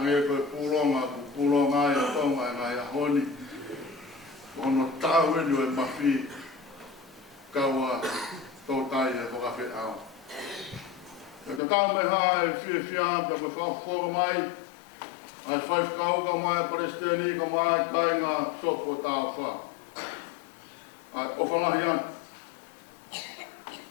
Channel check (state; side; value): drops out; right; at 11.6 s